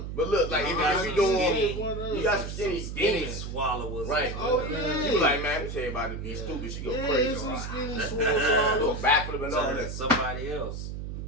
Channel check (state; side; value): noise; right; hum, 6 dB below the sound